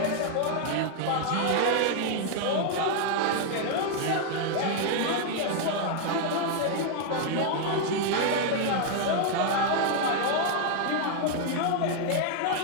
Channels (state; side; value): different; both; correlation 0.00